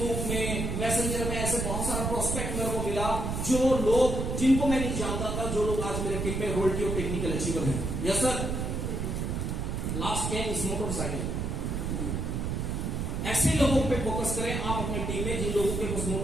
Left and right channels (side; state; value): right; noise; rumble, 2 dB below the sound